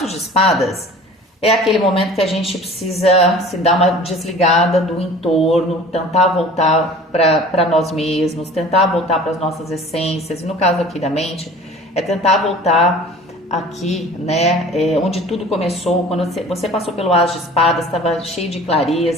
de espadas é aquele momento que a gente precisa se dar uma desligada do entorno, tentar voltar para nós mesmos, tentar voltar para as nossas essências. E no caso aqui da mente, é tentar voltar aqui, né, onde tudo começou, quando você passou pelo as de espadas, estava cheio de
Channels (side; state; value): both; normal; correlation 0.44